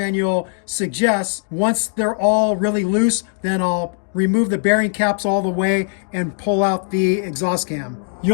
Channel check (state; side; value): silent; right; 60 dB below the other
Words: suggests. Once they're all really loose, then I'll remove the bearing caps all the way and pull out the exhaust cam.